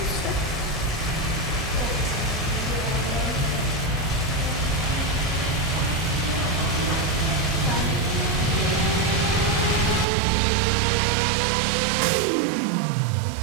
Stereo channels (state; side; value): drops out; left; at 10.1 s